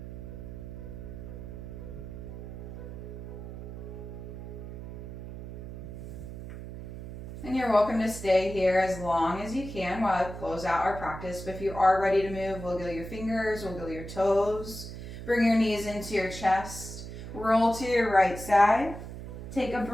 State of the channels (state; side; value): noise; right; hum, 10 dB below the sound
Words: And you're welcome to stay here as long as you can while I close out our practice. But if you are ready to move, wiggle your fingers, wiggle your toes, bring your knees into your chest, roll to your right side. Take a